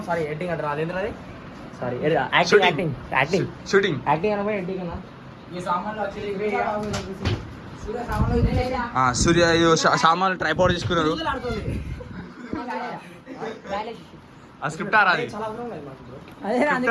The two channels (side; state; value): both; identical; correlation 1.00